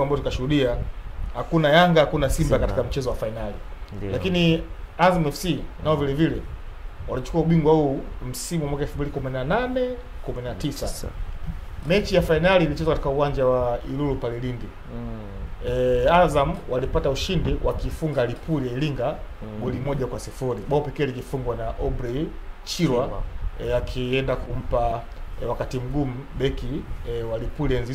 ambao tukashuhudia hakuna Yanga hakuna Simba katika mchezo wa finali. Lakini Azam FC nao vile vile walichukua ubingwa huu msimu wa mwaka 2018-19. Mechi ya finali ilichezwa katika uwanja wa Ilulu pale Lindi. Azam walipata ushindi wakifunga Lipuli ya Iringa goli 1-0. Bao pekee likifungwa na Aubrey Chirwa akienda kumpa wakati mgumu beki wa Lipuli enzi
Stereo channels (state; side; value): identical; both; correlation 1.00